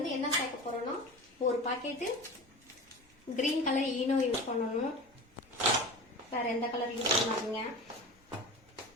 என்ன சேர்க்க போறோம்னா, ஒரு packet green colour Eno use பண்ணணும். வேற எந்த கலர் யூஸ் பண்ணாதீங்க.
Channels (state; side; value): normal; both; correlation 0.32